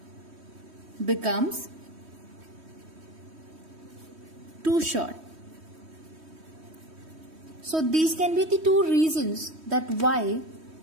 becomes too short. So these can be the two reasons that why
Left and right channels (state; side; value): late; left; 3.1 ms